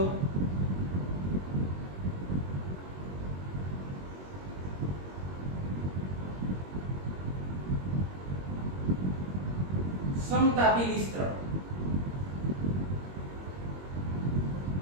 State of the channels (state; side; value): late; left; 21 ms